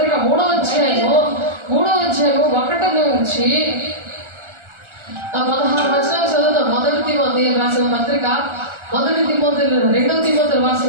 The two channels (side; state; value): left; late; 1.4 ms